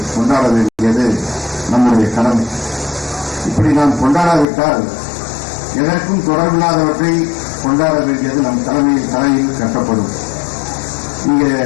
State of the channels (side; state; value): right; drops out; at 4.5 s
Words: கொண்டாட வேண்டியது நம்முடைய கடமை. இப்படி நாம் கொண்டாடாவிட்டால் எதற்கும் தொடர்பில்லாதவற்றை கொண்டாட வேண்டியது நம் தலையில் கட்டப்படும். இங்கே